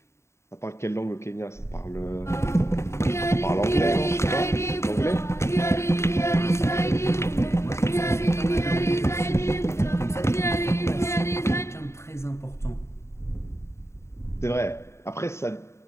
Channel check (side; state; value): right; late; 0.13 ms